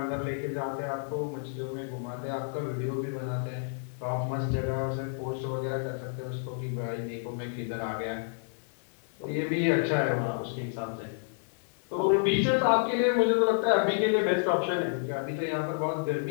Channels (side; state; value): right; silent; digital silence